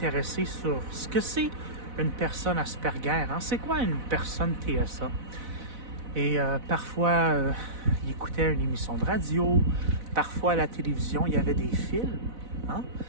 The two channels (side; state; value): left; late; 4.0 ms